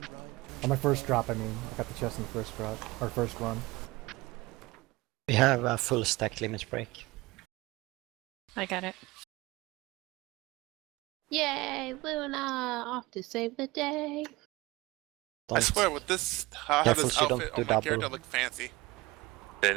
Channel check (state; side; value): quieter; left; 21.2 dB